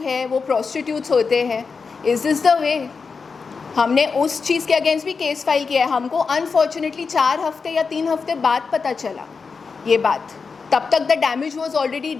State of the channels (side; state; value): right; quieter; 5.0 dB